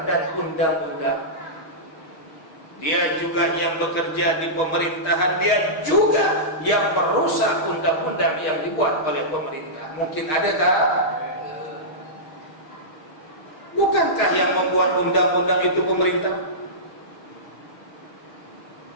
dan undang-undang. Dia juga yang bekerja di pemerintahan, dia juga yang merusak undang-undang yang dibuat oleh pemerintah. Mungkin ada tak? Bukankah yang membuat undang-undang itu pemerintah?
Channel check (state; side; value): late; right; 6.4 ms